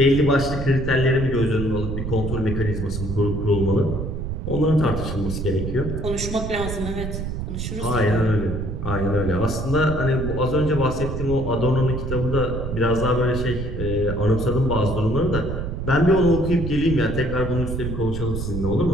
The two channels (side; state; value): right; noise; rumble, 4 dB below the sound